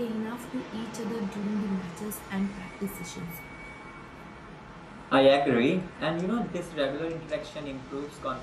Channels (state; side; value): identical; both; correlation 1.00